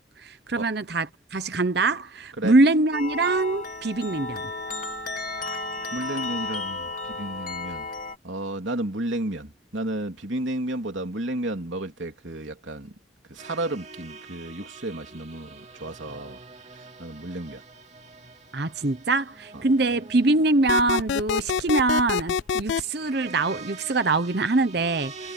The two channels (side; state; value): both; normal; correlation 0.31